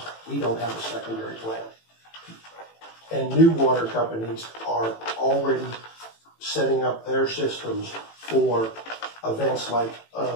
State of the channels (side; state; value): right; late; 18 ms